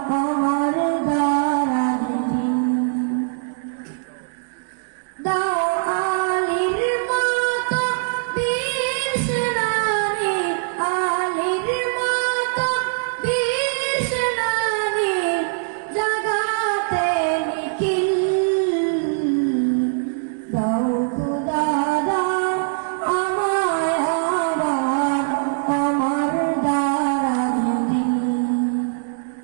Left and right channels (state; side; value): silent; left; digital silence